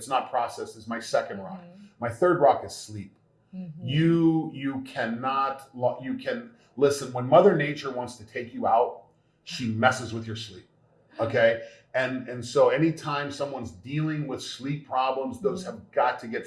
not processed is my second rock. My third rock is sleep. You can listen, when Mother Nature wants to take you out, she messes with your sleep. Okay? And so anytime someone's dealing with sleep problems, those have got to get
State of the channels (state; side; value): identical; both; correlation 1.00